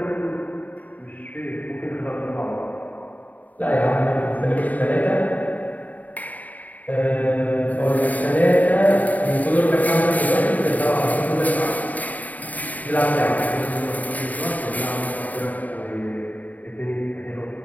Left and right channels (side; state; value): right; late; 0.075 ms